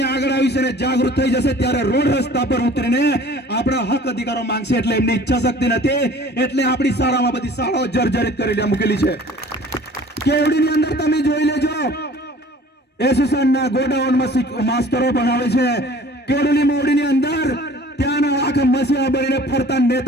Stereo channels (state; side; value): normal; both; correlation 0.48